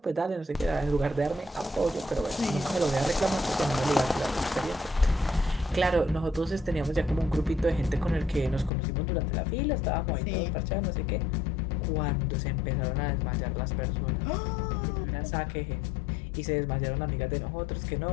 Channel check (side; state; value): right; drops out; at 8.7 s